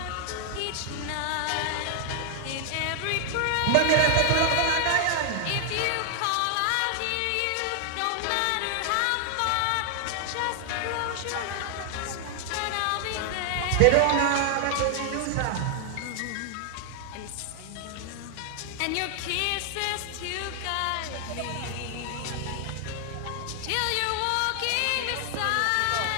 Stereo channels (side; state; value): both; different; correlation 0.00